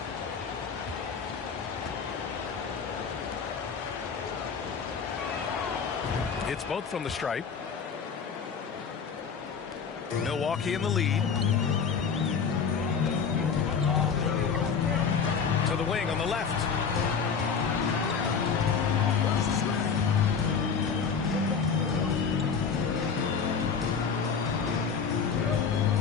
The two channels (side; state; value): right; quieter; 6.1 dB